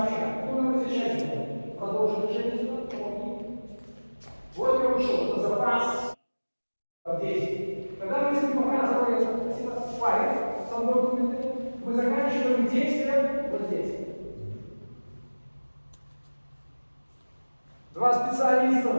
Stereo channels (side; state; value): both; inverted; correlation -1.00